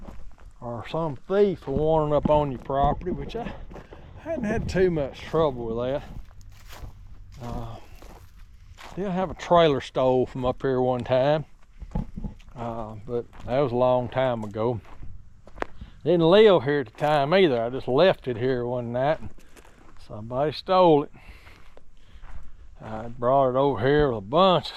or some thief wanting up on your property, which I hadn't had too much trouble with that. Did have a trailer stole from up here one time, but that was a long time ago. Didn't live here at the time either. I just left it here one night and somebody stole it. I brought it over here with a bunch of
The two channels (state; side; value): identical; both; correlation 1.00